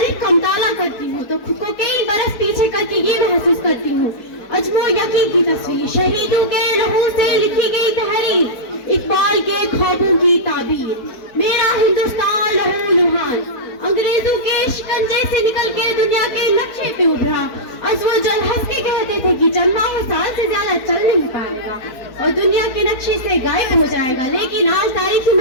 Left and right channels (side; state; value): right; late; 4.5 ms